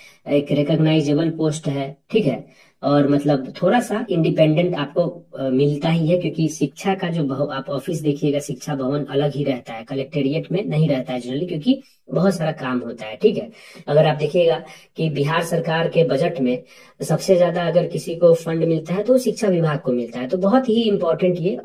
एक रिकॉग्नाइजेबल पोस्ट है, ठीक है। और मतलब थोड़ा सा इंडिपेंडेंट आपको मिलता ही है, क्योंकि शिक्षा का जो आप ऑफिस देखिएगा, शिक्षा भवन अलग ही रहता है, कलेक्टेरिएट में नहीं रहता है जनरली, क्योंकि बहुत सारा काम होता है, ठीक है। अगर आप देखिएगा कि बिहार सरकार के बजट में सबसे ज्यादा अगर किसी को फंड मिलता है तो शिक्षा विभाग को मिलता है। तो बहुत ही इंपॉर्टेंट ये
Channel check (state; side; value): identical; both; correlation 1.00